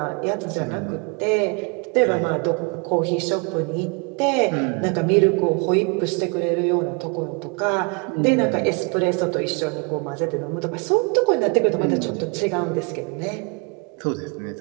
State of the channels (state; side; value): quieter; left; 33.2 dB